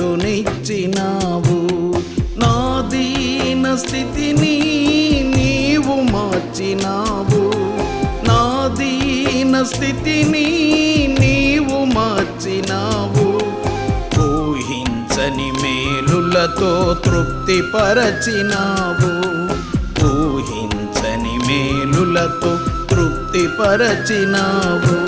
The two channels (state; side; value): identical; both; correlation 1.00